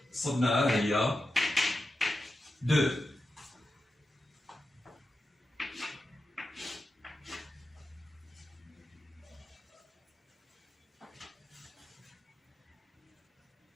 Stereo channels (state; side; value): normal; both; correlation 0.90